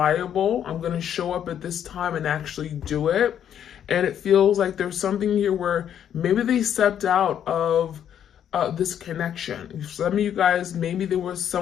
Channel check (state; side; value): quieter; right; 9.5 dB